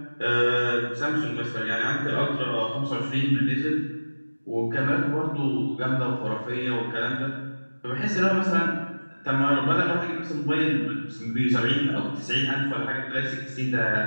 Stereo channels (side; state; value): both; inverted; correlation -1.00